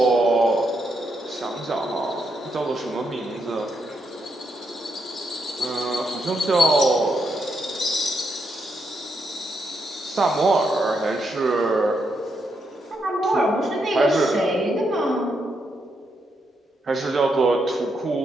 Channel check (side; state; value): both; normal; correlation 0.80